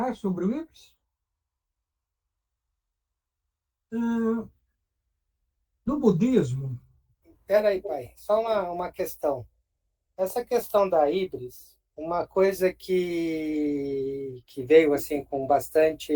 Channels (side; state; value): both; identical; correlation 1.00